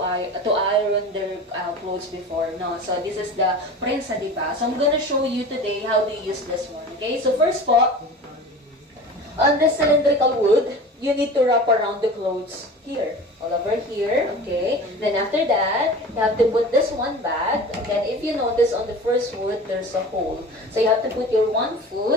iron their clothes before. No, so this is the prinsa di ba? So I'm gonna show you today how they use this one. Okay, so first po, on the cylindrical wood, you need to wrap around the clothes here, all over here, okay? Then after that, you have to put this one back. Again, if you notice on the first wood, there's a hole. So you have to put your one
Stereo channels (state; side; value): normal; both; correlation 0.36